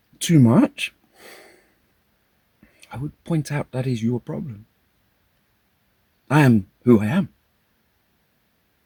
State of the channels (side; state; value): both; identical; correlation 1.00